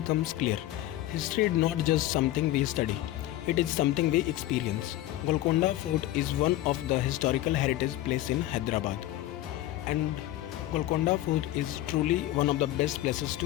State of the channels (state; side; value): quieter; right; 14.9 dB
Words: clear. History is not just something we study, it is something we experience. Golconda Fort is one of the historical heritage places in Hyderabad, and Golconda Fort is truly one of the best places